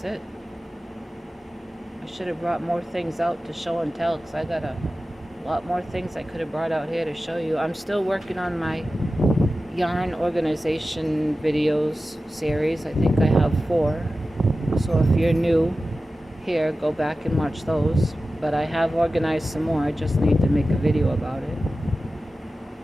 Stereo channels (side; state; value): both; normal; correlation 0.94